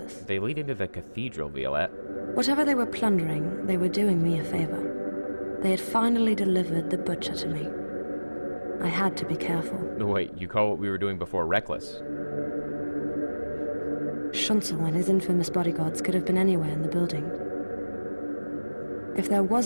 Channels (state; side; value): inverted; both; correlation -1.00